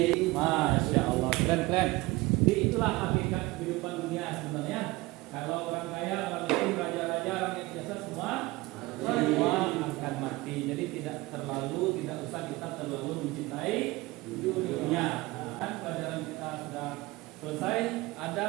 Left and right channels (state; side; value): quieter; left; 21.0 dB